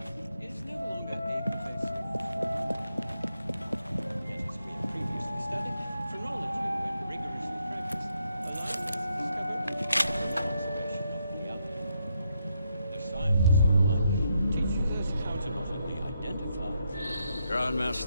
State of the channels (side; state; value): both; inverted; correlation -0.79